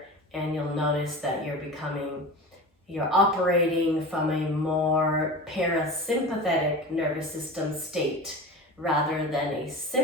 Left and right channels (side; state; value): both; normal; correlation 0.31